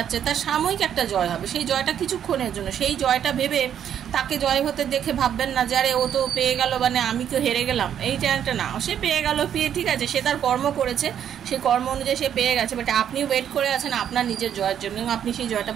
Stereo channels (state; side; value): quieter; left; 9.4 dB